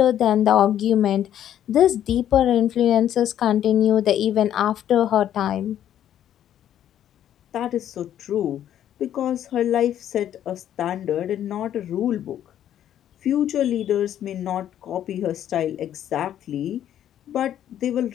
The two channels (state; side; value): quieter; right; 10.8 dB